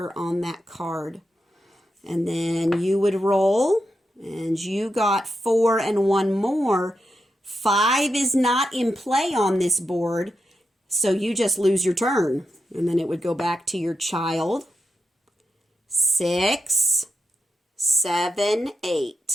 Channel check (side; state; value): both; normal; correlation 0.86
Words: on that card. And then you would roll, and you got 4 and 1 more. 5 is not in play on this board, so you just lose your turn. And then it would go back to your child. 6, 7,